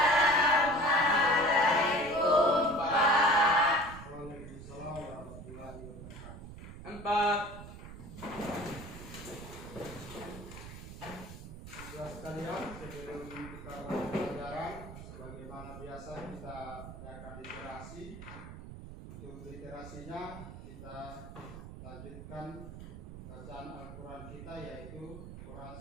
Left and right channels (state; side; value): noise; right; rumble, 12 dB below the sound